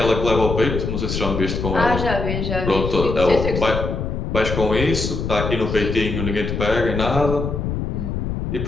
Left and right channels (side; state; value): left; noise; rumble, 3 dB below the sound